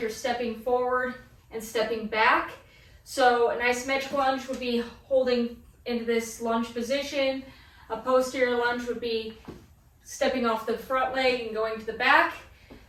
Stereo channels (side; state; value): both; identical; correlation 1.00